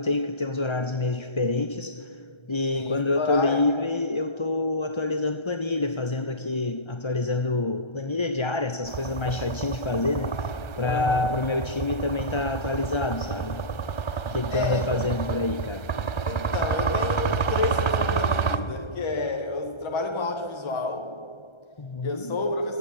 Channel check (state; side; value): late; right; 1.3 ms